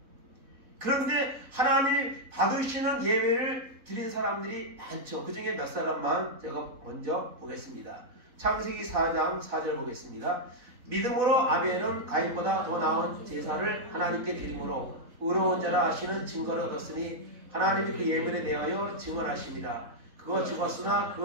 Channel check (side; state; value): left; late; 4.1 ms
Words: 그런데 하나님이 받으시는 예배를 드린 사람들이 많죠. 그 중에 몇 사람만 제가 먼저 보겠습니다. 창세기 4장 4절 보겠습니다. 믿음으로 아벨은 가인보다 더 나은 제사를 하나님께 드림으로 의로운 자라 하시는 증거를 얻었으니 하나님이 그 예물에 대하여 증언하십니다. 그가 죽었으나 그